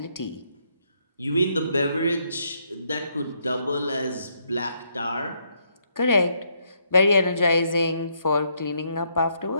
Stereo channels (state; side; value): inverted; both; correlation -0.74